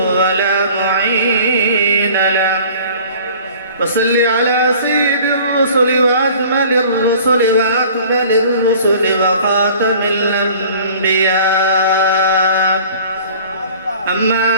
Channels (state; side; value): inverted; both; correlation -0.48